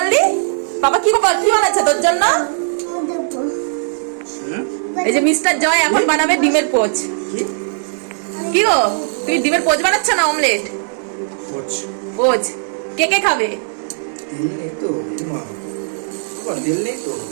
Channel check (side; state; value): left; silent; 63 dB below the other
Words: পাপা কি বানাচ্ছে তোর জন্য? এই যে মিস্টার জয় এখন বানাবে ডিমের পোচ। কি গো, তুমি ডিমের পোচ বানাচ্ছ না অমলেট? পোচ কে কে খাবে?